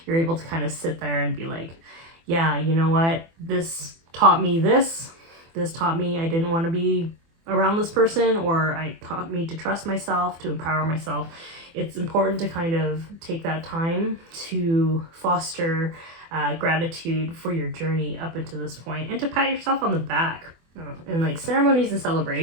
you're able to kind of sit there and be like, yeah, you know what, this taught me this taught me I didn't want to be around this person, or it taught me to trust myself, to empower myself. It's important to kind of take that time to foster gratitude for your journey up until this point, and to pat yourself on the back. And like ceremonies and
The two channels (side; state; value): left; late; 24 ms